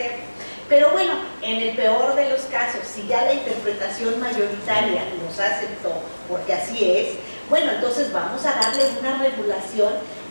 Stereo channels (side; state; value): both; inverted; correlation -1.00